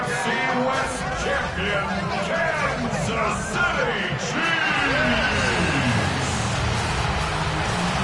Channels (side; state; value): both; identical; correlation 1.00